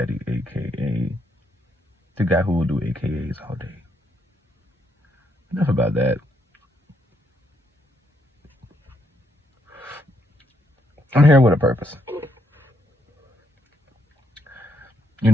aka the guy who will do AKAs all day. Enough about that. I'm here with a purpose. You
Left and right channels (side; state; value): both; normal; correlation 0.75